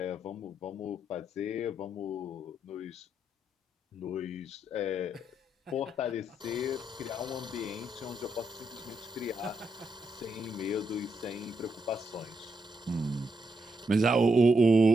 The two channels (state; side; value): normal; both; correlation 0.80